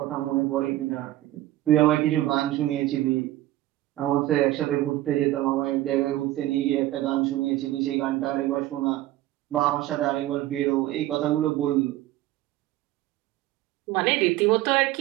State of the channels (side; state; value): left; quieter; 15.4 dB